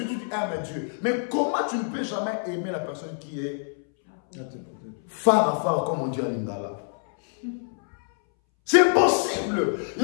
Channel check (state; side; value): silent; right; 61 dB below the other